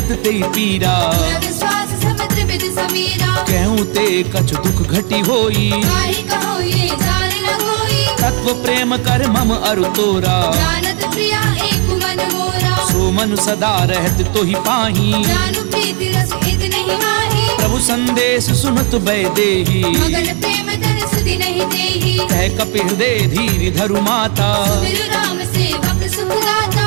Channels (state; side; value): quieter; left; 37.2 dB